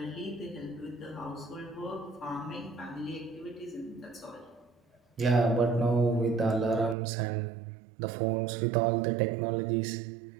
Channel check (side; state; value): left; drops out; at 7.0 s